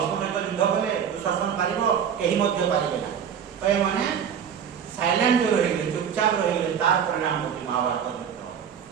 ସହିତ ଯୁଦ୍ଧ କଲେ ଦୁଃଶାସନ ପାରିବ କେହି ମଧ୍ୟ ପାରିବେ ନା। ତ ଏମାନେ ସାଇଲେଣ୍ଟ ରହିଲେ ଚୁପଚାପ ରହିଲେ ତାର ପରିଣାମ ହେଉଛି ମହାଭାରତ ଯୁଦ୍ଧ।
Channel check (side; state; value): left; quieter; 8.0 dB